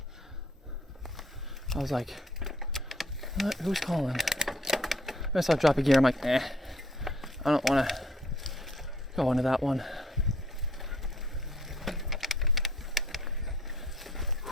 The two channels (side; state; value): both; normal; correlation 0.62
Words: I was like, what? Who's calling? I saw drop a gear. I'm like, I don't want to go into that one.